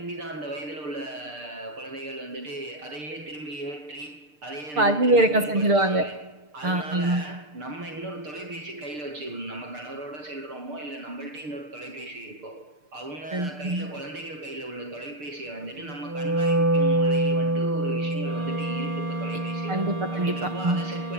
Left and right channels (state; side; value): late; left; 6.7 ms